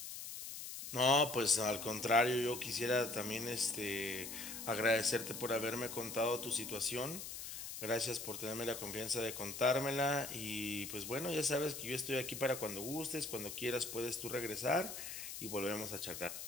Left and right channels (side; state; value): left; noise; hiss, 8 dB below the sound